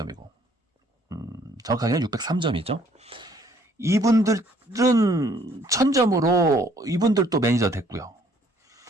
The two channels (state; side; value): normal; both; correlation 0.62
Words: 정확하게는 603점이죠. 이분들은 1000점으로 이분들도 매니저 됐고요.